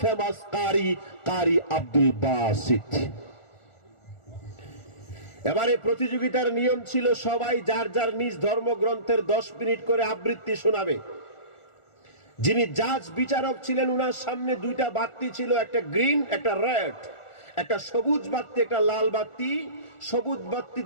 ফেমাস কারি আব্দুল বাসিত। এবারে প্রতিযোগিতার নিয়ম ছিল সবাই যার যার নিজ ধর্মগ্রন্থের 10 মিনিট করে আবৃত্তি শোনাবে। যিনি জাজ বিচারক ছিলেন উনার সামনে দুইটা বাতি ছিল, একটা গ্রিন একটা রেড, একটা সবুজ বাতি একটা লাল বাতি। সবুজ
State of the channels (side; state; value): right; late; 1.4 ms